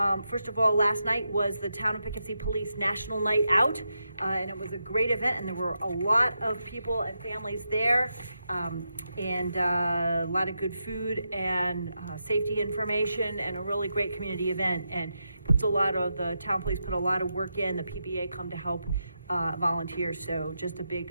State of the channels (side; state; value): both; inverted; correlation -0.86